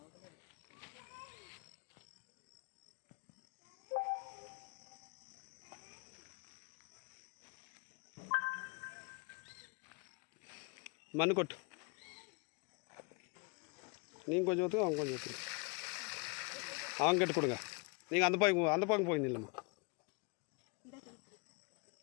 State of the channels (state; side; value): quieter; right; 32.5 dB